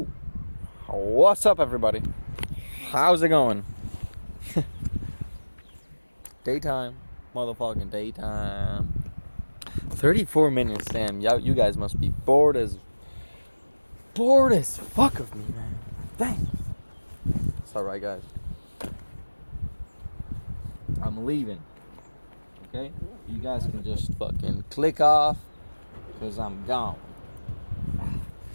what's up, everybody? How's it going? Daytime. Motherfucking daytime. 34 minutes, damn. You guys must be bored as fuck of me, man. Dang. It's alright, guys. I'm leaving. Okay? You guys can just fucking click off, because I'm gone.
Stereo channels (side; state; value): both; inverted; correlation -1.00